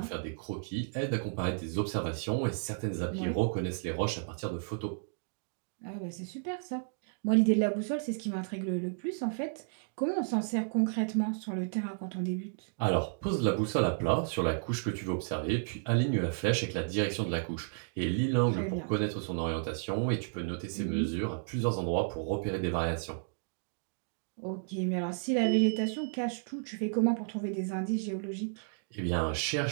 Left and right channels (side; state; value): left; silent; digital silence